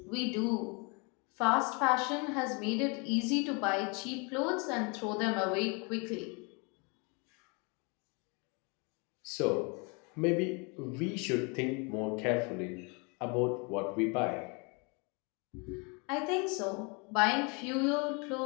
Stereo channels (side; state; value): right; quieter; 31.9 dB